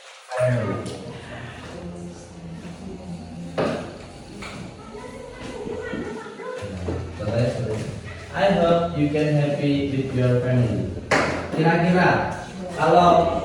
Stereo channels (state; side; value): identical; both; correlation 1.00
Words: family. I hope you can happy with your family. Kira-kira kalau